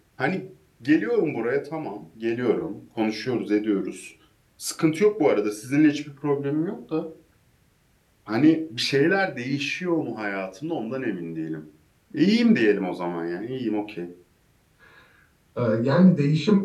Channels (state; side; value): identical; both; correlation 1.00